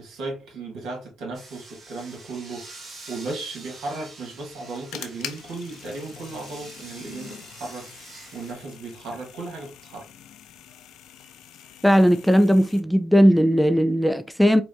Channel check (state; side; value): normal; both; correlation 0.95